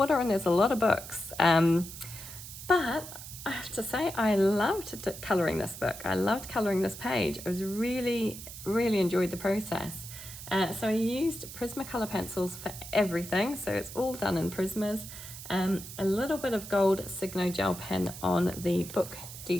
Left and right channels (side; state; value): right; noise; hiss, 12 dB below the sound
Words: and there's a lot of books. But I have to say, I loved colouring this book. I loved colouring this page. I was really enjoyed the process. So I used Prismacolor pencils for everything. So it's all done in Prismas. A little bit of gold Signo gel pen on the book